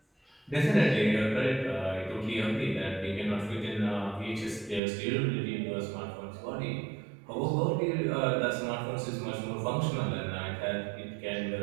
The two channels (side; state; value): left; drops out; at 4.8 s